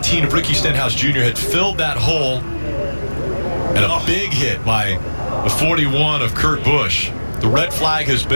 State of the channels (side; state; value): both; inverted; correlation -1.00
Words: of Ricky Stenhouse Jr. had filled that hole, and a big hit by the 41 of Kurt Busch. The red flag has